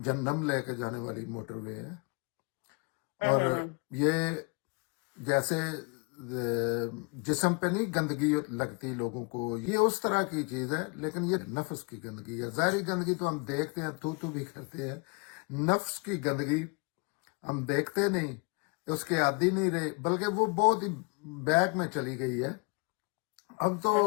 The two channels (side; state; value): right; quieter; 31.1 dB